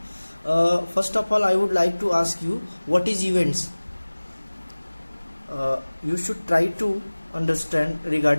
First of all, I would like to ask you, what is events? You should try to understand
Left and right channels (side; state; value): both; inverted; correlation -1.00